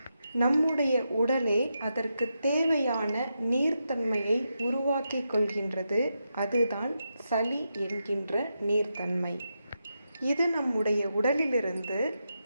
நம்முடைய உடலே அதற்கு தேவையான நீர்த்தன்மையை உருவாக்கி கொள்கின்றது. அதுதான் சளி என்கின்ற நீர்த்தன்மை. இது நம்முடைய உடலிலிருந்து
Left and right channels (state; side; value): inverted; both; correlation -0.86